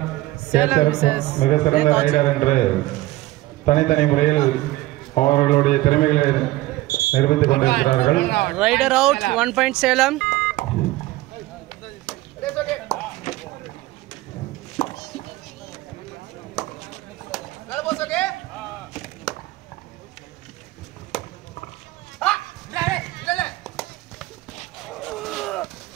ரைடர் என்று தனித்தனி முறையில் அவர்களுடைய திறமைகளை நிரூபித்துக் கொண்டிருக்கிறார்கள். Raider out 1 point Salem.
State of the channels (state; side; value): quieter; left; 18.0 dB